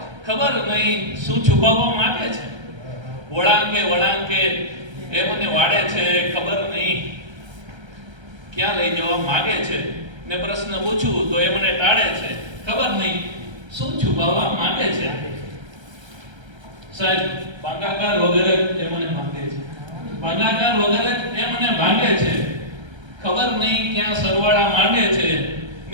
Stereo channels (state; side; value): late; left; 1.3 ms